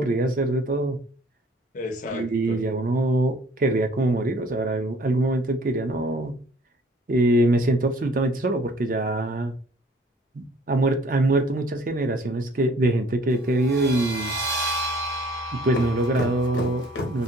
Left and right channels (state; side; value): normal; both; correlation 0.56